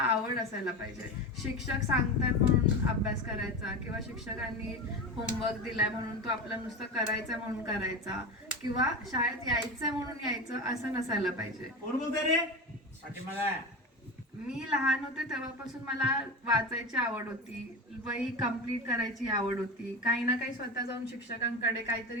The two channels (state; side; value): normal; both; correlation 0.24